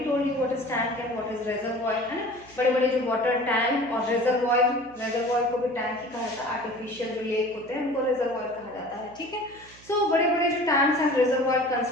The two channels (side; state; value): right; noise; hum, 24 dB below the sound